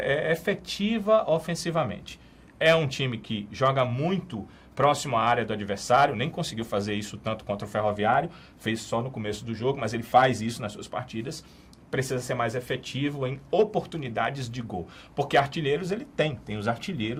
efetiva ofensivamente. É um time que joga muito próximo à área do adversário, nem conseguiu fazer isso tanto contra o Ferroviário, fez só no começo do jogo, mas ele faz isso nas suas partidas. Precisa ser mais efetivo em oportunidades de gol. Porque artilheiros ele tem os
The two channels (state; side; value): identical; both; correlation 1.00